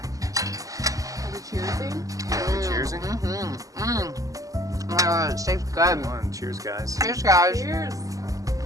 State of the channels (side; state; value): left; late; 0.17 ms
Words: Cheersing? Oh, it tastes good. Come on, cheers, guys. Cheers, guys. Cheers.